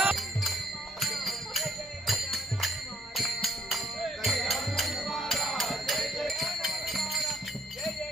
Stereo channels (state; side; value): normal; both; correlation 0.66